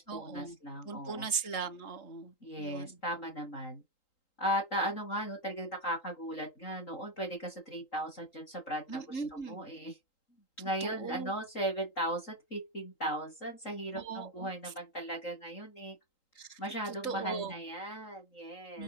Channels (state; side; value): late; right; 3.8 ms